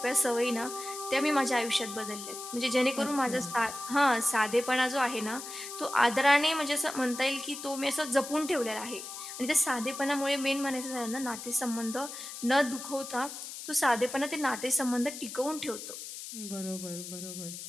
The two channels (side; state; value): left; noise; hiss, 10 dB below the sound